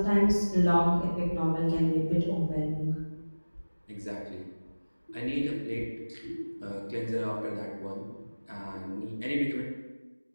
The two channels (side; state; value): both; inverted; correlation -1.00